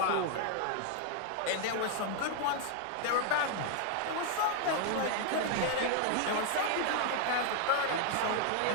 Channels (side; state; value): both; different; correlation 0.00